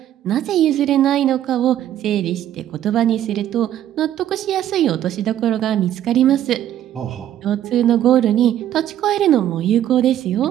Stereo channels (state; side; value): quieter; left; 11.7 dB